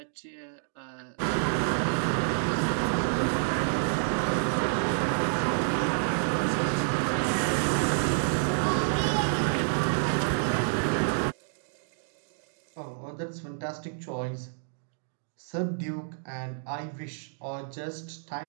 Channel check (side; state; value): left; silent; digital silence